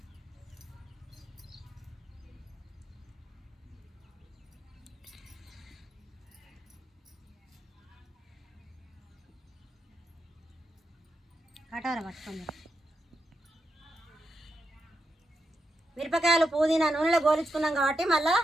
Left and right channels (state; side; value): normal; both; correlation 0.85